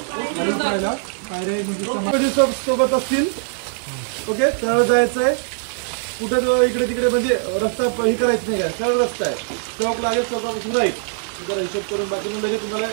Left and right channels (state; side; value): silent; left; digital silence